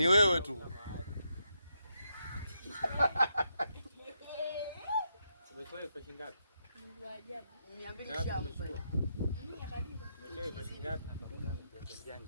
wewe tu. Umetoa pesa ngapi? Ndio ajabu. 200 shamu pale. Mimi akadiba. Umetoa pesa ngapi?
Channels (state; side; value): inverted; both; correlation -0.81